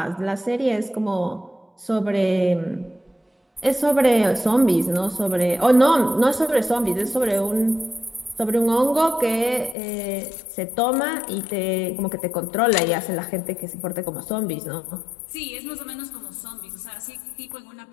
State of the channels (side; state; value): right; drops out; at 9.8 s